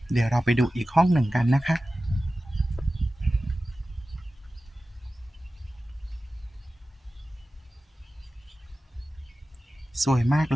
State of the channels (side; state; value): both; normal; correlation 0.95